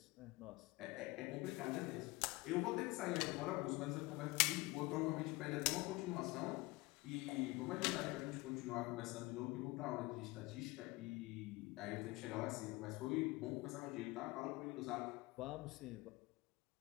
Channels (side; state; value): right; quieter; 22.5 dB